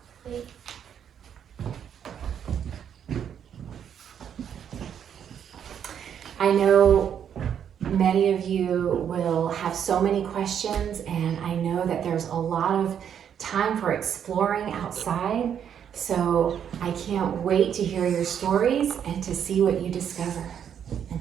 I know many of you will have so many questions, and I know that there's a lot of time for exploring outside. So I can't wait to hear your stories and to see what you discover.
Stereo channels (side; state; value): left; quieter; 8.6 dB